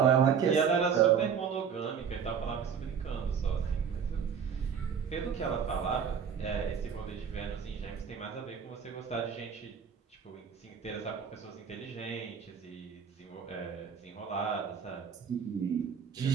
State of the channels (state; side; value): quieter; left; 7.1 dB